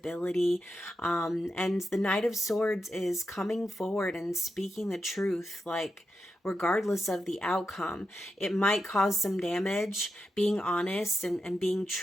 And the Knight of Swords is coming forward and speaking the truth, like, regardless of the outcome. It might cause some damage. Being honest and being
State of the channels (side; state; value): both; normal; correlation 0.87